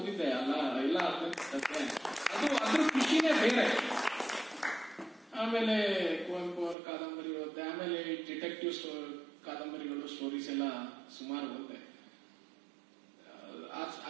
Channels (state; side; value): drops out; left; at 6.8 s